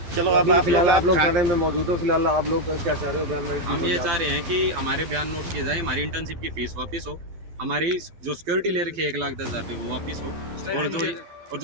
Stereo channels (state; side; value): late; left; 12 ms